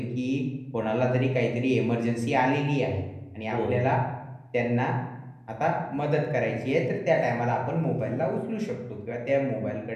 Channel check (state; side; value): identical; both; correlation 1.00